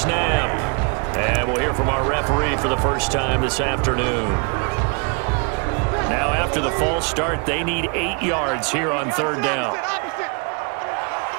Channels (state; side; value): quieter; left; 35.2 dB